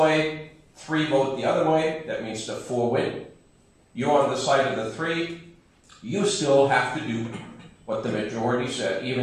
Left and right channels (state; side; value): identical; both; correlation 1.00